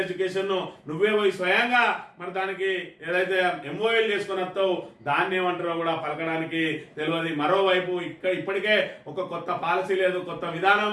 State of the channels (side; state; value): both; identical; correlation 1.00